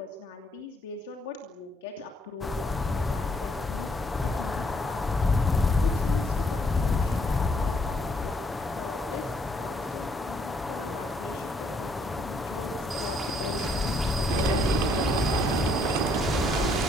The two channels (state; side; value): normal; both; correlation 0.69